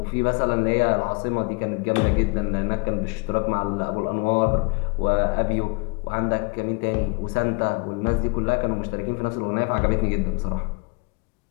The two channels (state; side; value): quieter; right; 31.2 dB